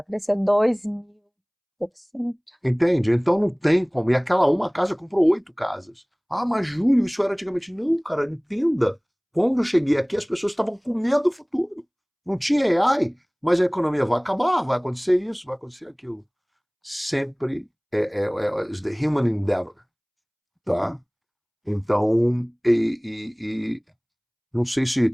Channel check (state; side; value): identical; both; correlation 1.00